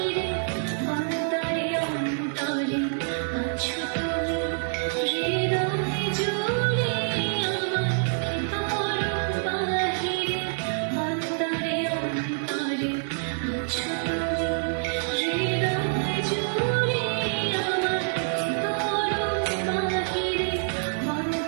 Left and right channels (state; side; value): silent; left; 61 dB below the other